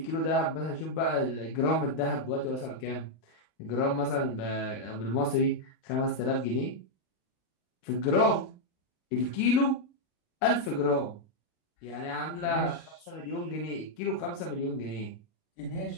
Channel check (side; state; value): right; late; 39 ms